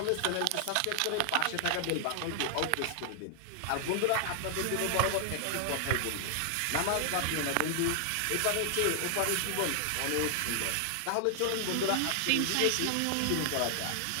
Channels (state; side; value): different; both; correlation 0.00